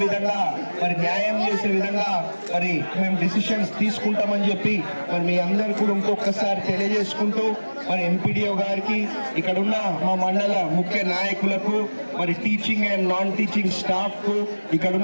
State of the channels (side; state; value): both; inverted; correlation -1.00